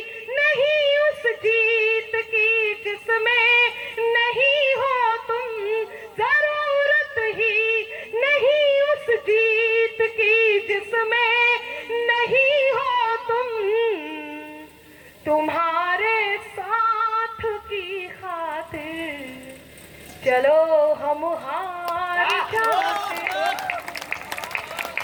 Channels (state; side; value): identical; both; correlation 1.00